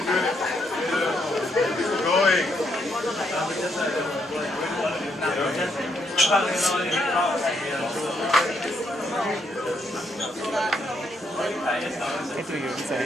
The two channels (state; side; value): normal; both; correlation 0.75